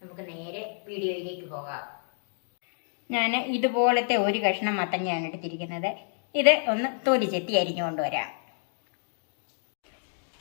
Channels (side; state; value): right; silent; digital silence